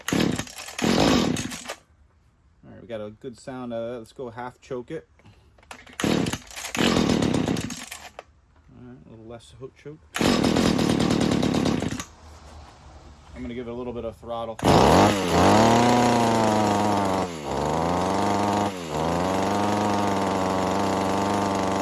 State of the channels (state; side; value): identical; both; correlation 1.00